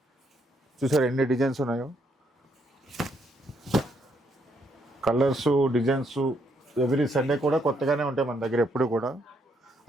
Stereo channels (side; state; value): both; normal; correlation 0.73